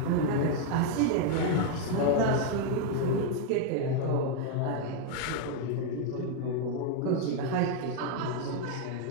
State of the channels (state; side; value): different; both; correlation 0.00